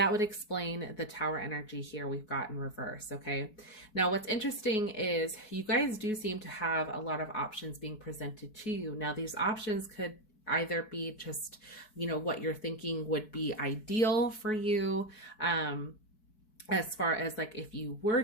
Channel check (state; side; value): late; right; 4.6 ms